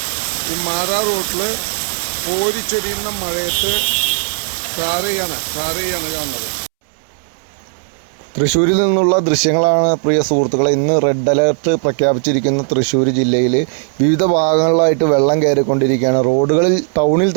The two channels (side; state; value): left; silent; 69 dB below the other